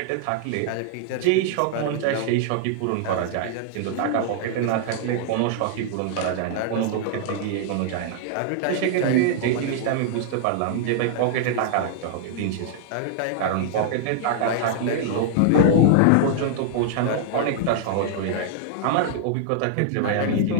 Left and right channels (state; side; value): different; both; correlation -0.01